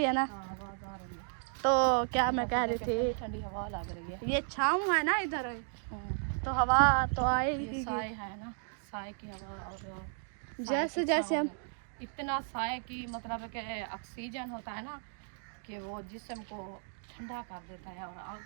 है ना। हाँ आवाज़ आ रही है। तो क्या मैं कह रही थी, ठंडी हवा लग रही है। ये छाँव है ना इधर, तो हवा तो ये आएगी। साए है ना, साए की हवा, और जैसे जैसे हम इतना साए की मतलब कि ऑक्सीजन होता है ना कि वो जिस्म को ठंडा कर देता है और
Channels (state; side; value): silent; left; 55 dB below the other